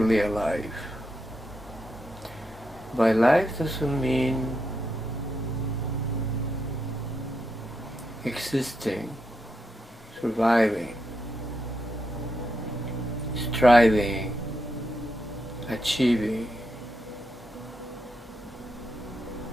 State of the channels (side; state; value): both; normal; correlation 0.83